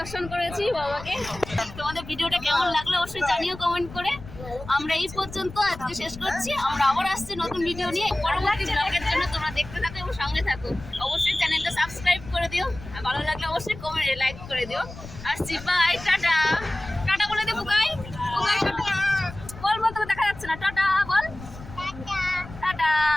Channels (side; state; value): left; noise; rumble, 14 dB below the sound